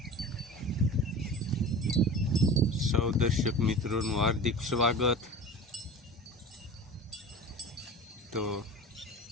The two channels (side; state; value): both; normal; correlation 0.35